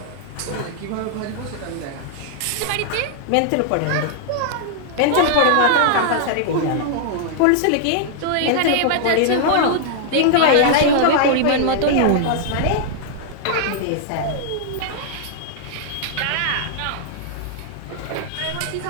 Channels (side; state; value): both; different; correlation -0.01